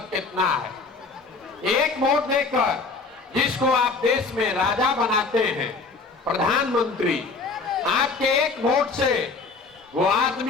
कितना है। एक वोट देकर जिसको आप देश में राजा बनाते हैं, प्रधानमंत्री, आपके एक वोट से वो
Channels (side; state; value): right; quieter; 4.2 dB